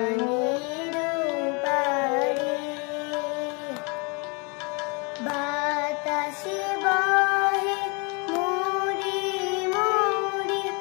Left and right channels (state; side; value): quieter; right; 31.5 dB